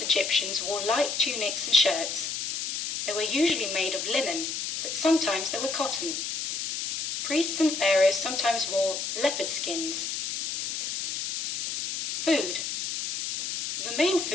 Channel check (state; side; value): noise; left; hiss, 4 dB below the sound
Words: Egyptians wore light tunics and shirts. They were usually made of linen, but sometimes they were cotton. Priests and pharaohs sometimes wore leopard skins. Food. The main